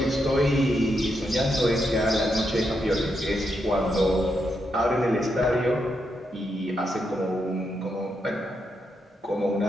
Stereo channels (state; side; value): normal; both; correlation 0.82